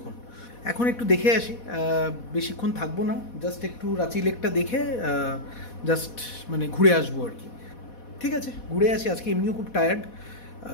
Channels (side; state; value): right; late; 4.1 ms